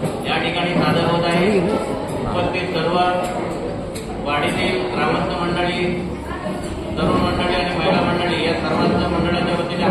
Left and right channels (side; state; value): both; identical; correlation 1.00